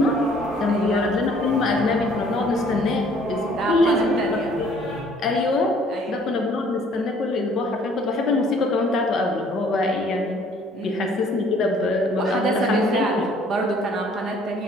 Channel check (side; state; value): both; normal; correlation 0.58